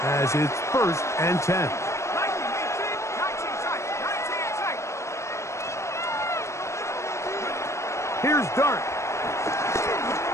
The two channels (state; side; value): late; right; 0.14 ms